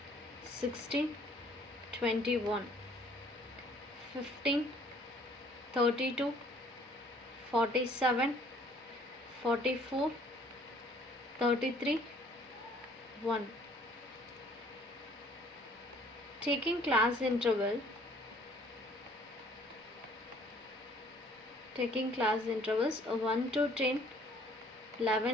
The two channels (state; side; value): normal; both; correlation 0.58